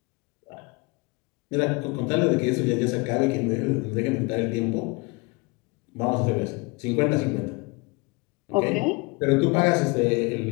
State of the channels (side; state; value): right; quieter; 27.3 dB